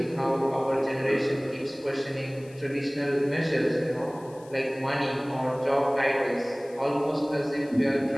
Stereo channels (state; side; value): noise; left; hiss, 25 dB below the sound